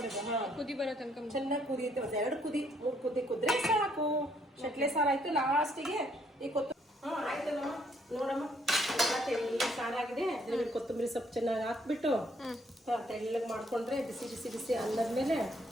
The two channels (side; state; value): both; normal; correlation 0.69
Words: ಹಾಂ. ಕುದಿ ಬರೋ ತನಕ ಚೆನ್ನಾಗಿ ಕುದಿಯುತ್ತೆ. ಒಂದು 2 ಕುದಿ 3 ಕುದಿ ಕುದ್ರೆ ಸಾಕು. ಶೆಟ್ಲೆ ಸಾರು ಆಯ್ತು. ಲಾಸ್ಟಿಗೆ ಈ ಕೊತ್ತಂಬರಿ. ಹಾಂ ಆಯ್ತಲ್ಲಮ್ಮ, ನೋಡಮ್ಮ ತೆಳ್ಳಗೆ ಸಾರಾಗಿದೆ. ಅದ್ರಲ್ಲಿ ಕೊತ್ತಂಬರಿ ಸೊಪ್ಪು ಚೆನ್ನಾಗಿ ಹಾಕ್ಬಿಟ್ಟು ತೆಳ್ಳಗೆ ಮಾಡ್ಕೊಂಡ್ರೆ ಬಿಸಿ ಬಿಸಿ ಬಿಸಿ ಅನ್ನದ ಮೇಲೆ